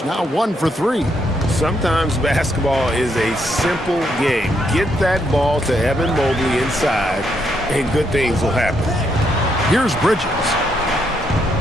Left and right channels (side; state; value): both; normal; correlation 0.76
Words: Now 1 for 3. Sometimes basketball is a simple game. Get that ball to Evan Mobley inside, and good things will happen. Here's Bridges.